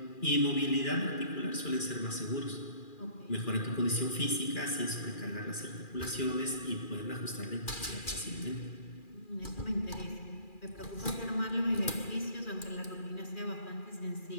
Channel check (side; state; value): right; late; 2.4 ms